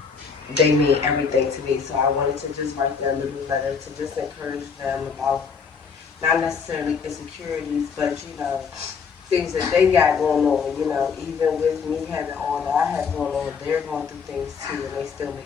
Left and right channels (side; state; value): right; quieter; 5.9 dB